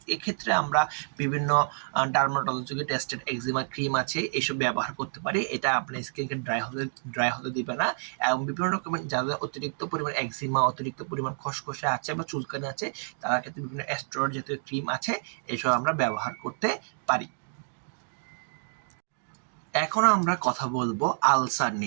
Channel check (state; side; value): silent; left; digital silence